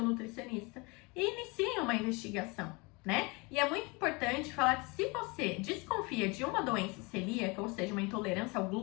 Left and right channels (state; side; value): quieter; right; 27.7 dB